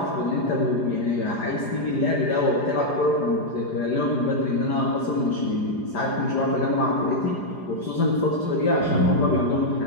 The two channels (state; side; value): late; right; 4.9 ms